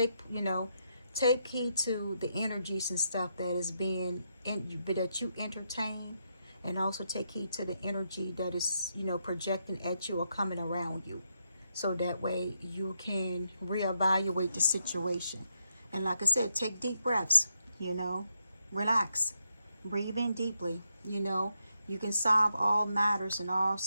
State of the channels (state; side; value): inverted; both; correlation -0.81